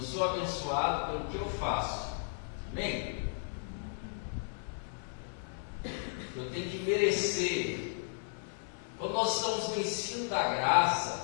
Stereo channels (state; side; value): silent; right; 55 dB below the other